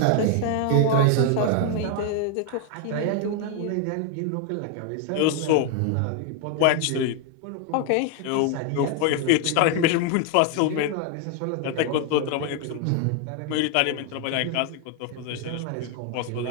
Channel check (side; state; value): both; different; correlation 0.00